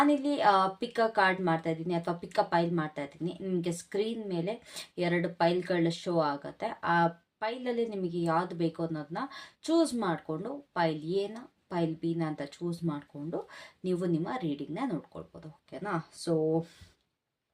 ಪಿಕ್ ಅ ಕಾರ್ಡ್ ಮಾಡ್ತಾ ಇದ್ದೀನಿ ಅಥವಾ ಪಿಕ್ ಅ ಪೈಲ್ ಮಾಡ್ತಾ ಇದ್ದೀನಿ. ನಿಮಗೆ ಸ್ಕ್ರೀನ್ ಮೇಲೆ 2 ಪೈಲ್ಗಳ ಶೋ ಆಗುತ್ತೆ. ಆ ಪೈಲಲ್ಲಿ ನಿಮಗೆ ಯಾವ್ದು ಬೇಕು ಅನ್ನೋದನ್ನ ಚೂಸ್ ಮಾಡಿಕೊಂಡು ಪೈಲ್ ಎನ ಪೈಲ್ ಬಿನ ಅಂತ ಚೂಸ್ ಮಾಡಿಕೊಂಡು ನೀವು ನಿಮ್ಮ ರೀಡಿಂಗ್ನ ನೋಡ್ಕೊಳ್ಬೋದು. ಓಕೆನಾ? ಸೊ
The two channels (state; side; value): identical; both; correlation 1.00